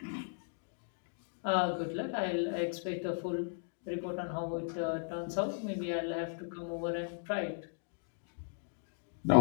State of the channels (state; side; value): silent; right; digital silence